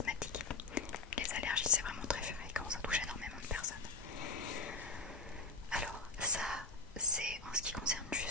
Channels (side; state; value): right; quieter; 3.7 dB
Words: Les allergies, c'est vraiment très fréquent, ça touche énormément de personnes. Alors ça, c'est en ce qui concerne